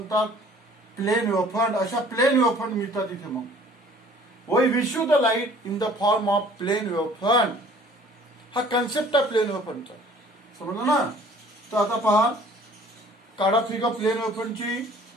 प्लेन वेव्ह फ्रंट. अशा प्लेन वेव्ह फ्रंट मिळतात इथे. मग we receive the light in the form of plane wave front. हा कन्सेप्ट आहे प्लेन वेव्ह फ्रंटचा. समजलं ना? तर आता पहा, काढा फिगर प्लेन वेव्ह फ्रंटची.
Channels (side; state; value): both; normal; correlation 0.53